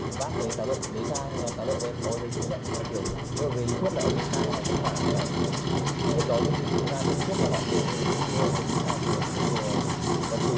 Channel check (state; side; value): identical; both; correlation 1.00